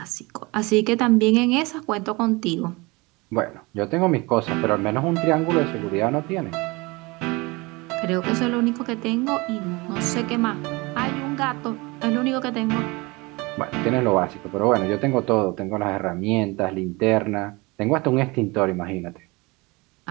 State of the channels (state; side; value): quieter; left; 24.8 dB